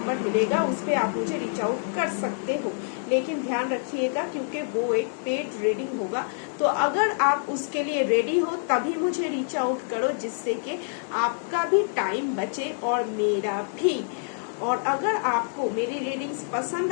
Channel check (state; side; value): silent; right; digital silence